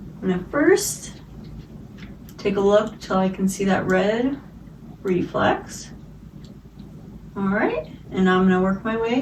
I'm going to first take a look till I can see that red reflex. All right, and I'm going to work my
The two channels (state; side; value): identical; both; correlation 1.00